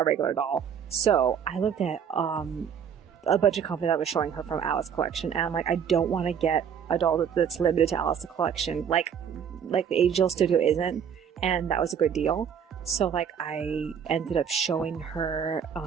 regular doll. So I looked at a bunch of company that was showing her from Alice collection, and I'm like, I don't want to get a doll that's limited to Alice the Collection, like the Angel Studio isn't, and that was a good deal. So like I ended up showing her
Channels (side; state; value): left; quieter; 7.8 dB